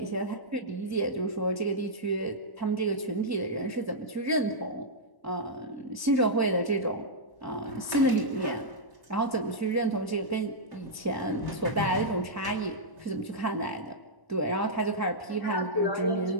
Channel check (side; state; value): right; late; 1.0 ms